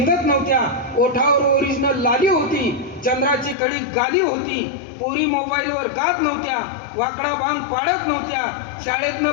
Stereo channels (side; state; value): right; drops out; at 3.6 s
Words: नव्हत्या, ओठावर ओरिजिनल लाली होती, चंद्राची कडी गाली होती, पोरी मोबाईलवर गात नव्हत्या, वाकडा भांग पाडत नव्हत्या, शाळेतनं